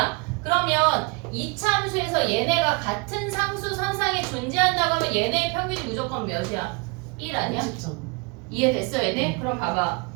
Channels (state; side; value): quieter; left; 30.4 dB